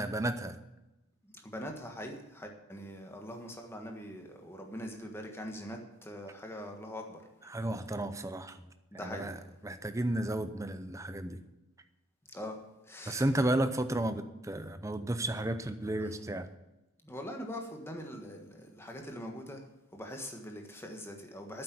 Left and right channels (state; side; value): normal; both; correlation 0.74